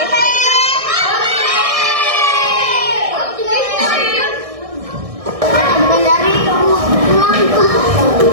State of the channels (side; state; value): left; late; 1.6 ms